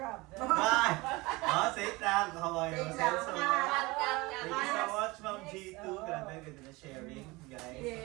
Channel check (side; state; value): left; quieter; 22.9 dB